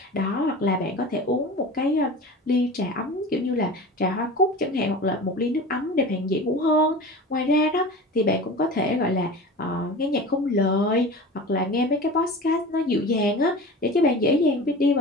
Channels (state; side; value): normal; both; correlation 0.34